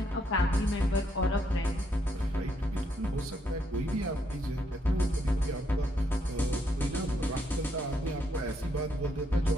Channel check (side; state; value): both; normal; correlation 0.75